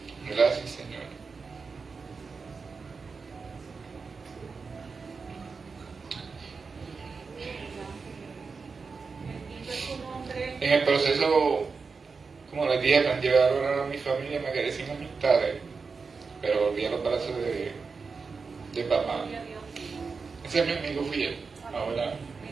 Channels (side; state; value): left; quieter; 4.8 dB